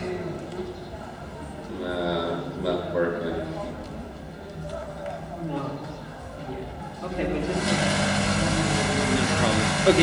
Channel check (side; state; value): both; identical; correlation 1.00